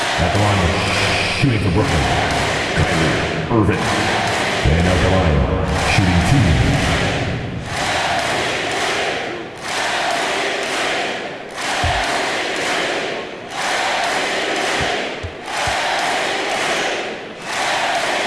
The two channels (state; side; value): identical; both; correlation 1.00